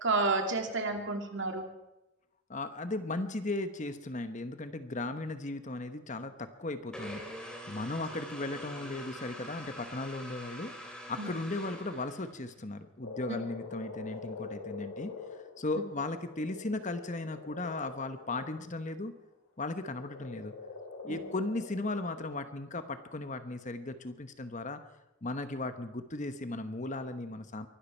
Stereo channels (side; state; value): both; normal; correlation 0.25